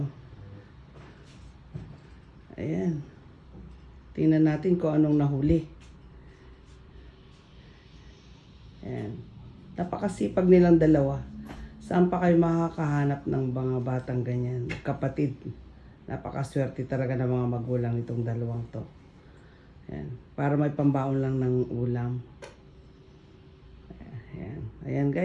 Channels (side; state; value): both; identical; correlation 1.00